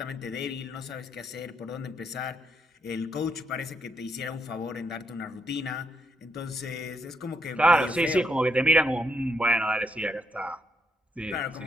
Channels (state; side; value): normal; both; correlation 0.76